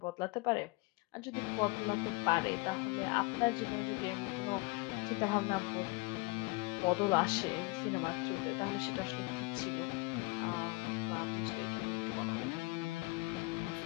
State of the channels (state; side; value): quieter; right; 25.0 dB